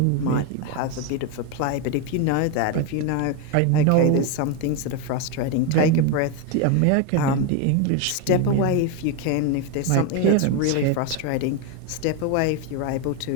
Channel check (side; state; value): both; different; correlation 0.02